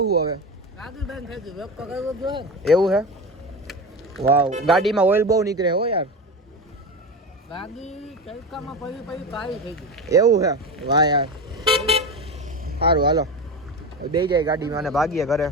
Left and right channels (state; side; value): normal; both; correlation 0.24